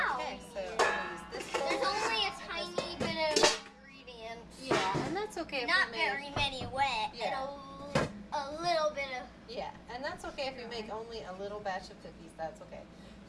Okay, we so need it. I'll use this bowl. There's only a tiny bit of ingredients. Yeah, and that's okay if Not we make, very many wet. Yeah. And a little bit of. Yeah, and that's okay if we make only a little batch of cookies. That's okay.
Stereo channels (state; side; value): identical; both; correlation 1.00